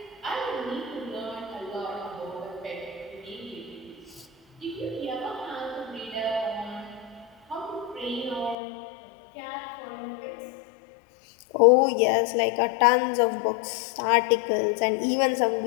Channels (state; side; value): drops out; right; at 8.6 s